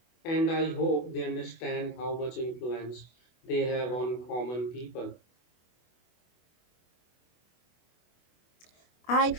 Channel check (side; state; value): right; late; 24 ms